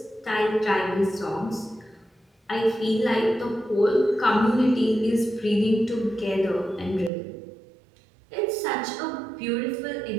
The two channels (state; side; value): drops out; left; at 7.1 s